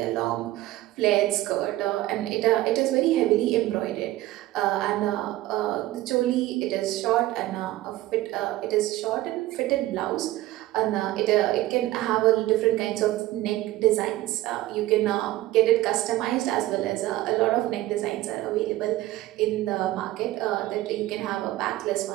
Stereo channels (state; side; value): quieter; left; 16.4 dB